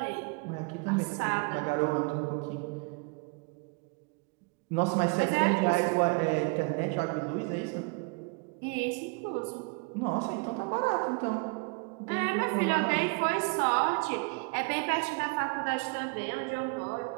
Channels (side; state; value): left; quieter; 32.2 dB